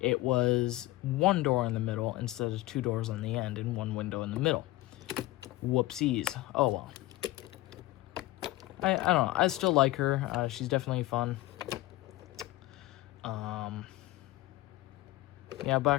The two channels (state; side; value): quieter; right; 17.7 dB